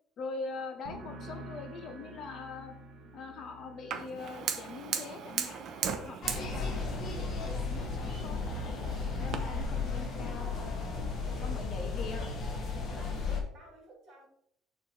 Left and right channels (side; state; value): both; normal; correlation 0.51